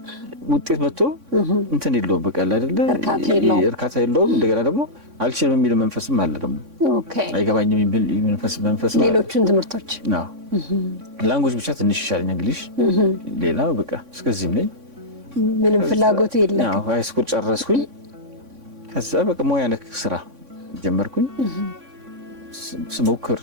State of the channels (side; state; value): left; late; 3.6 ms